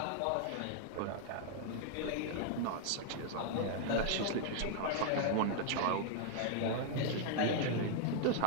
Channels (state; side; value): different; both; correlation 0.00